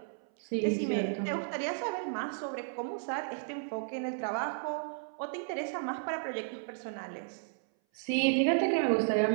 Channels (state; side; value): silent; left; 56 dB below the other